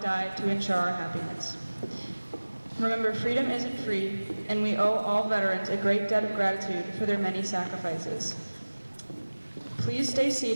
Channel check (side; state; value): both; inverted; correlation -1.00